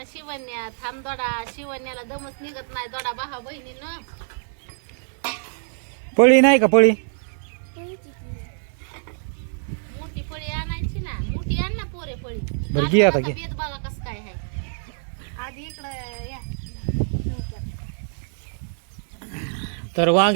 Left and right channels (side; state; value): left; silent; 62 dB below the other